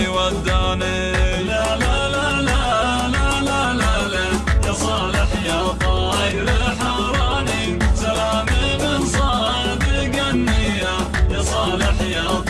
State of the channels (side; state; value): both; identical; correlation 1.00